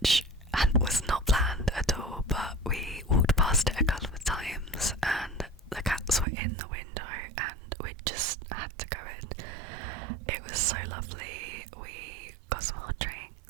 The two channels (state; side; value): drops out; left; at 6.2 s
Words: was not planned at all, but we walked past it a couple of times and the cats were in the window and we just had to go in. It was so lovely. We got some hot